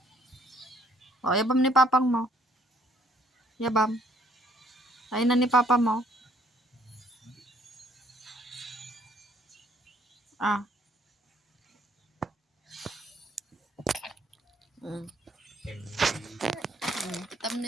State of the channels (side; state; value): both; normal; correlation 0.64